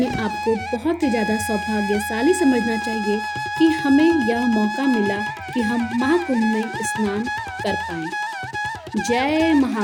आप को बहुत ही ज़्यादा सौभाग्यशाली समझना चाहिए कि हमें यह मौका मिला कि हम महाकुंभ में स्नान कर पाएं। जय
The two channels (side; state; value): both; identical; correlation 1.00